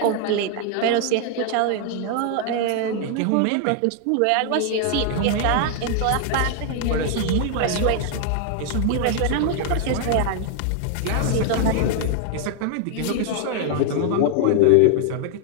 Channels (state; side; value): different; both; correlation 0.00